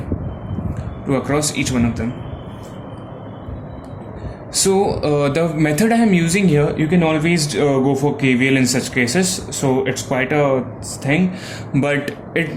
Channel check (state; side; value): identical; both; correlation 1.00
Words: 2 across each one of them. So the method I am using here, you can always go for KVL in such cases. So it's quite a thing, but